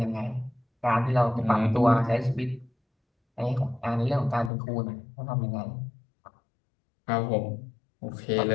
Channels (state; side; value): drops out; right; at 4.5 s